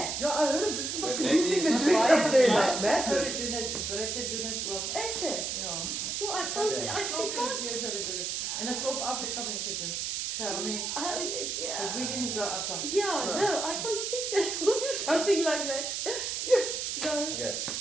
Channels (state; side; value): noise; right; hiss, 2 dB below the sound